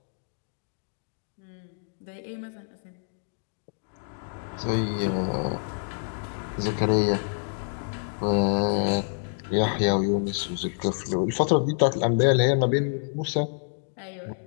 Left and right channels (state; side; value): silent; right; digital silence